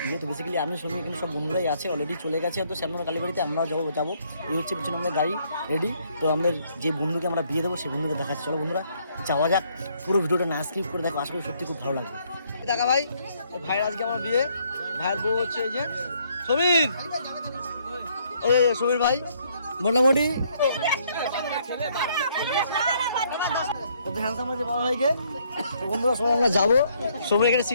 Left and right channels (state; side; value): inverted; both; correlation -0.68